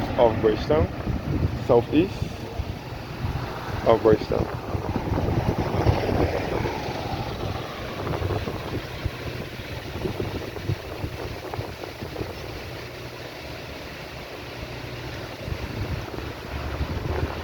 of Bridgetown, southeast of Bridgetown.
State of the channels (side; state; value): both; identical; correlation 1.00